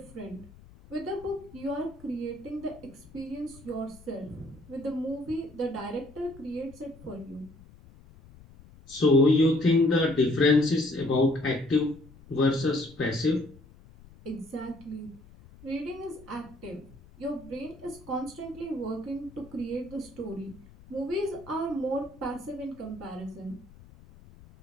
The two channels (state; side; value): noise; left; rumble, 22 dB below the sound